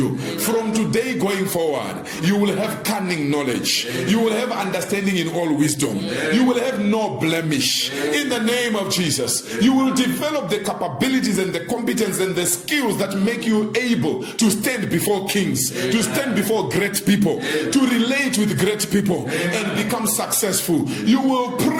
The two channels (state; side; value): identical; both; correlation 1.00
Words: Amen. From today going forward, you will have cunning knowledge. Amen. You will have understanding in all wisdom. Amen. You will have no blemish. Amen. In the name of Jesus, you will develop the capabilities and the competence and the skills that make you able to stand before kings, Amen. To stand before great people, Amen. To relate with great people, Amen. And become successful. You will